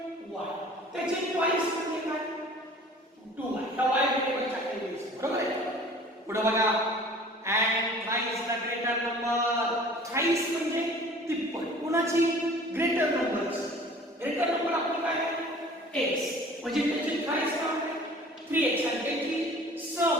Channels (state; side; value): normal; both; correlation 0.47